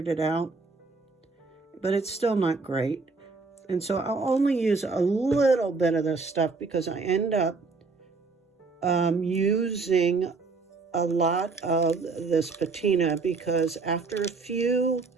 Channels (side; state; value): left; quieter; 4.2 dB